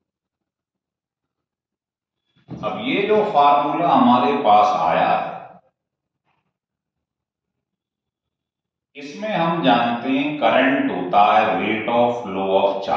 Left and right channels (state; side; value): identical; both; correlation 1.00